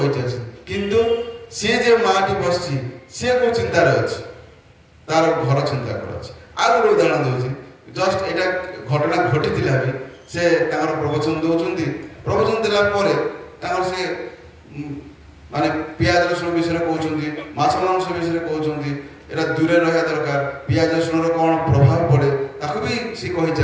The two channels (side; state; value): both; identical; correlation 1.00